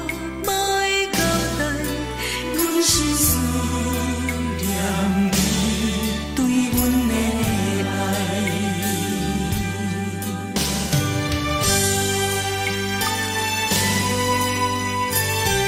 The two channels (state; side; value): identical; both; correlation 1.00